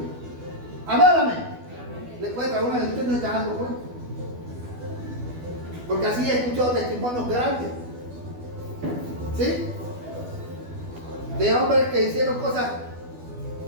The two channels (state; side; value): late; left; 12 ms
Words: Amén, amén. Le puede traer una lectura y no se está dando cuenta. Porque así he escuchado testimonios grandes. ¿Sí? De hombres que hicieron cosas